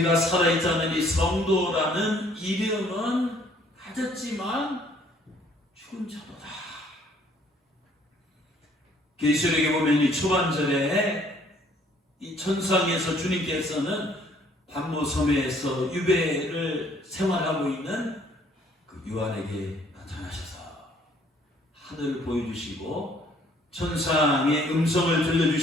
살아있다는 이 성도라는 이름은 가졌지만 죽은 자로다. 계시록에 보면 이 초반절에 이 천상에서 주님께서는 반모섬에서 유배를 생활하고 있는 그 요한에게 나타나셔서 하늘을 보여주시고 천상의 음성을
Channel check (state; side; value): normal; both; correlation 0.61